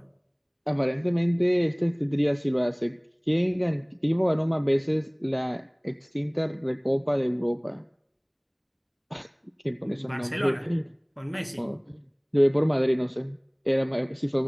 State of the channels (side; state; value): both; identical; correlation 1.00